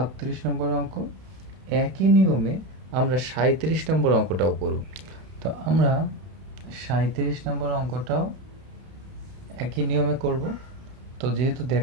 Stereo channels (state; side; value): late; left; 31 ms